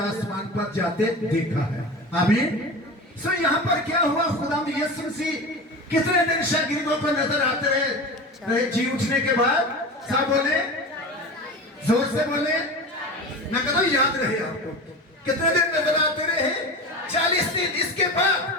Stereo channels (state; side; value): normal; both; correlation 0.29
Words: पर जाते देखा है। आमीन। सो यहाँ पर क्या हुआ? खुदावंद यीशु मसीह कितने दिन शागिर्दों को नजर आते रहे जी उठने के बाद? सब बोले, जोर से बोले। मैं कहता हूं याद रहे आपको। कितने दिन नजर आते रहे? 40 दिन। इसके बाद